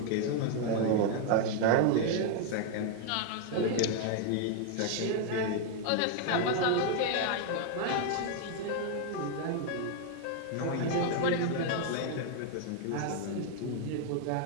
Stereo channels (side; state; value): both; different; correlation 0.01